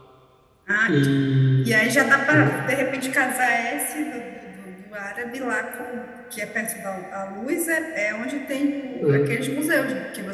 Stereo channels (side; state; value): both; identical; correlation 1.00